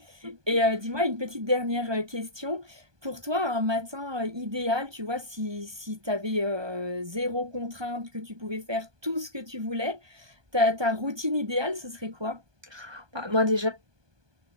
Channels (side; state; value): left; late; 1.2 ms